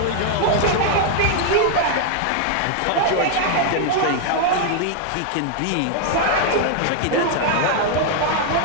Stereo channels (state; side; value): different; both; correlation 0.00